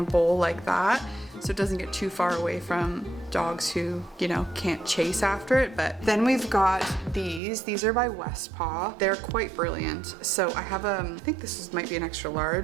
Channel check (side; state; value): left; drops out; at 7.4 s